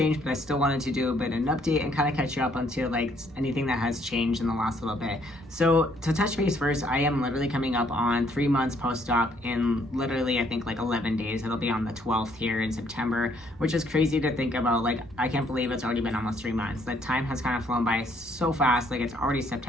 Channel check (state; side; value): normal; both; correlation 0.67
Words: but I still wanted to do a bit of an update and kind of catch you up onto like anything that has changed in the last little bit. So to touch base first, I am literally coming up on 3 months post-op in literally I think like 11 days. It'll be on the 12th here in September, which is crazy to think about. Like I can't believe it's already been almost 3 months. The time has kind of flown by so fast. Like it's already